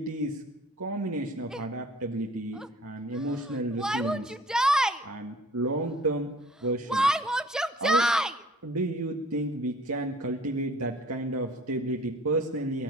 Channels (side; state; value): both; normal; correlation 0.50